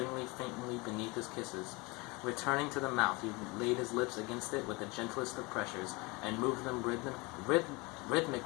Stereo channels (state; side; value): quieter; right; 25.9 dB